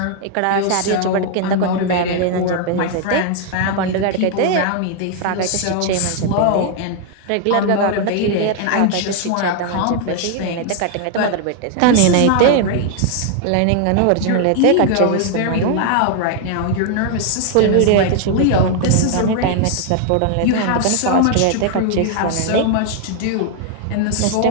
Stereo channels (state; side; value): different; both; correlation 0.00